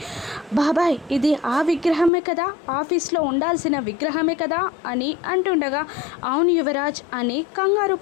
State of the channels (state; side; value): drops out; right; at 2.1 s